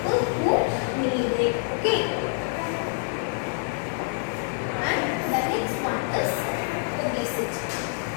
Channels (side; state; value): right; silent; 61 dB below the other